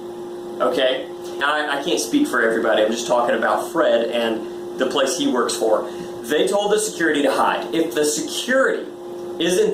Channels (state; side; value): identical; both; correlation 1.00